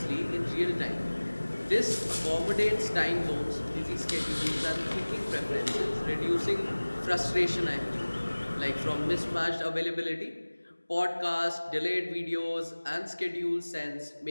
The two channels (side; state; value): both; inverted; correlation -1.00